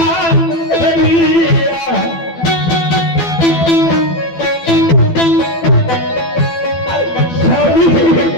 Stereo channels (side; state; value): right; late; 12 ms